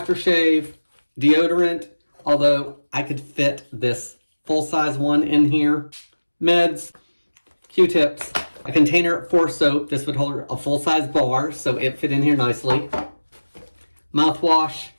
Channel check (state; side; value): inverted; both; correlation -1.00